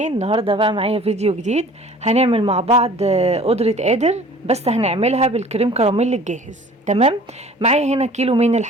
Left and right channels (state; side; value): normal; both; correlation 0.48